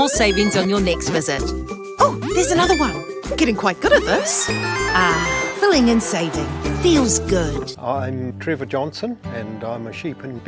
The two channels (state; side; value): identical; both; correlation 1.00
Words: savings on your next visit. Oh, there's another one. Getting quite good at this. Filling and saving. Feels good. I'm Trevor Johnson and I'm a sheep and